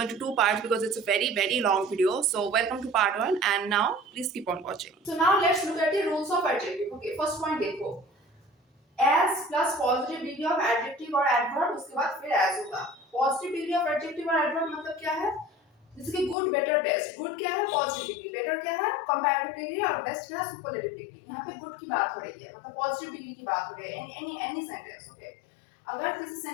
two parts because it's a very long video. So welcome to part one, and now please keep on watching. So now let's look at the rules of adjective. Okay, first point देखो, as plus positive degree of adjective और adverb, उसके बाद फिर as होगा. Positive degree of adjective और adverb मतलब क्या है? जैसे कि good, better, best. Good क्या है? Positive degree. Better क्या है? Comparative degree. और best क्या है? Superlative degree. यहाँ पे good की बात हो रही है, मतलब positive degree की बात हो रही है. Any sentence, okay? अगर किसी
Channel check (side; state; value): right; drops out; at 16.4 s